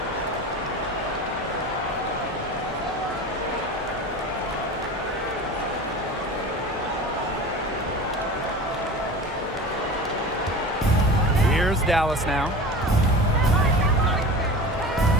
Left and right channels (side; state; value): both; normal; correlation 0.34